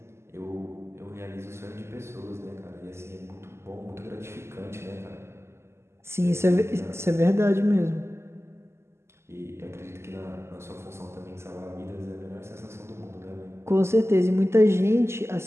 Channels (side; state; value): left; late; 0.13 ms